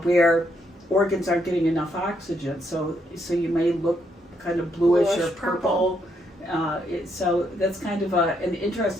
where organs aren't getting enough oxygen. So you may look kind of bluish or purple. So that's kind of an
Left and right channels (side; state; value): both; normal; correlation 0.75